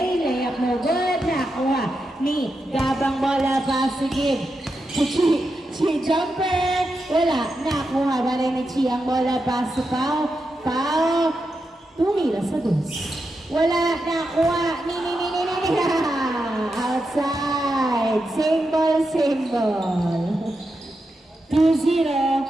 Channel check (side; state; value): both; normal; correlation 0.87